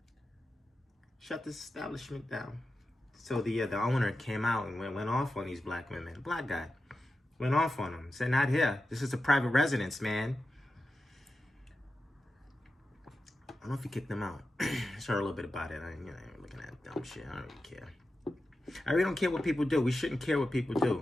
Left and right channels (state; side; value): normal; both; correlation 0.91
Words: Shut this establishment down. So the owner came out and went off on these black women. The black guy went off on them. Said, not here. This is a private residence, man. I don't know if he kicked them out. I heard a little bit about it. I ain't looking at dumb shit. I don't really care. I really don't care what people do. We shouldn't care what people